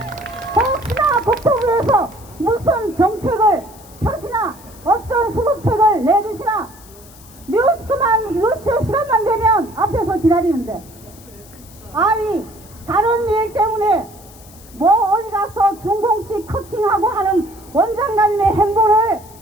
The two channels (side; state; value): left; noise; hiss, 22 dB below the sound